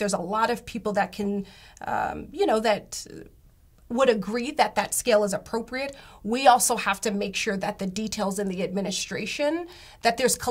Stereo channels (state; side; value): identical; both; correlation 1.00